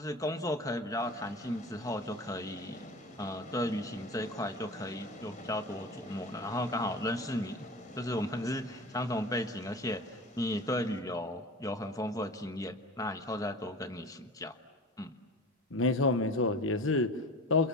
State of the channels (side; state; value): both; normal; correlation 0.36